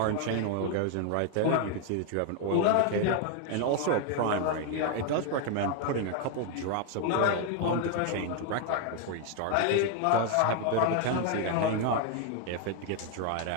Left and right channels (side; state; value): both; different; correlation 0.01